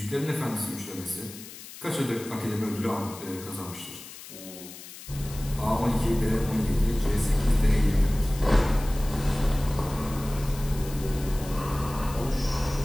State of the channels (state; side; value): noise; left; hiss, 15 dB below the sound